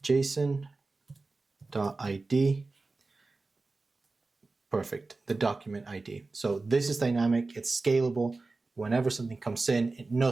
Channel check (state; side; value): quieter; left; 3.6 dB